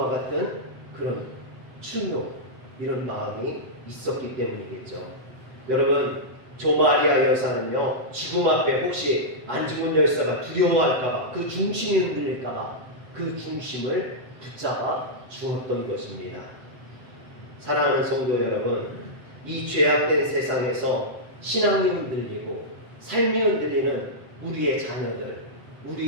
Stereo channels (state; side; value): late; left; 7.7 ms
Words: 같은 그런 충효, 이런 마음이 있었기 때문이겠죠. 여러분, 조마리아 여사는요, 죽음 앞에 혹시 안중근 열사가 두려워할까봐, 그 중심이 흔들릴까봐 그 중심을 붙잡아 주었던 것입니다. 사랑하는 성도 여러분, 이 죄악된 세상에서 신앙이 흔들리고 삶이 흔들리는 우리의 자녀들,